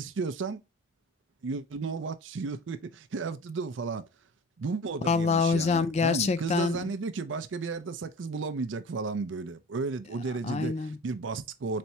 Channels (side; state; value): both; normal; correlation 0.38